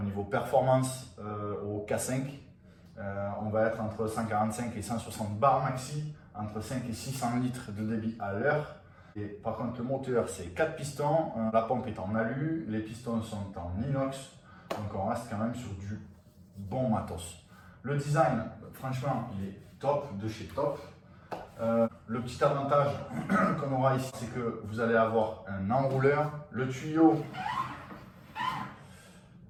niveau performance au K5. On va être entre 145 et 160 bars maxi, entre 5 et 600 litres de débit à l'heure. Et par contre, le moteur, c'est 4 pistons, la pompe est en alu, les pistons sont en inox, donc on reste quand même sur du bon matos. Le design, franchement, il est top, de chez top. Le petit avantage qu'on aura ici, c'est que vous allez avoir un enrouleur, le tuyau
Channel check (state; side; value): identical; both; correlation 1.00